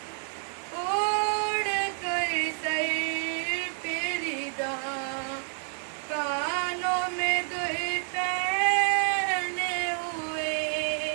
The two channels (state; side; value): silent; left; 59 dB below the other